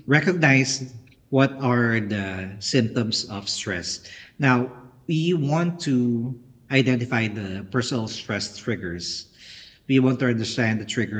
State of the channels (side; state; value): both; identical; correlation 1.00